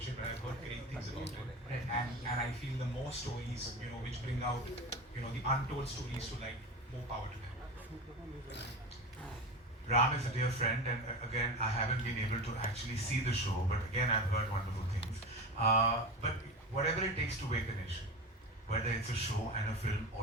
it, but I've heard great things about it. And I feel the more stories, which bring out, the untold stories to light, more power to them. Ram is a dear friend, and again, I haven't been able to actually see the show, but again, I've heard wonderful things. But whatever it takes to wake a nation, whether it's a show and a film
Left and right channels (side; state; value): both; normal; correlation 0.26